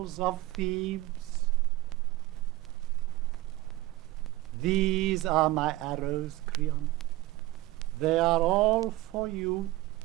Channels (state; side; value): quieter; left; 18.3 dB